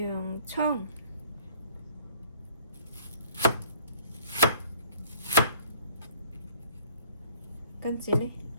葱，跟住呢，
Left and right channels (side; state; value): both; inverted; correlation -0.56